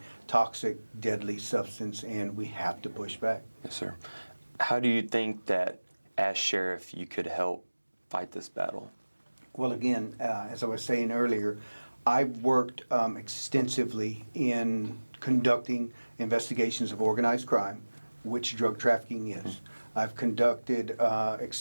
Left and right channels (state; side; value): inverted; both; correlation -1.00